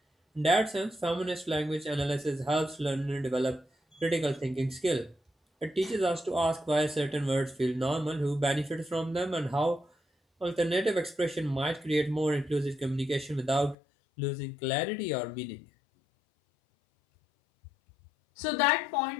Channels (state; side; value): drops out; right; at 13.8 s